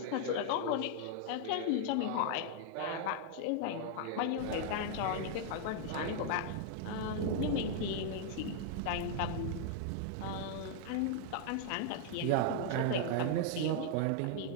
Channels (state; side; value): different; both; correlation 0.00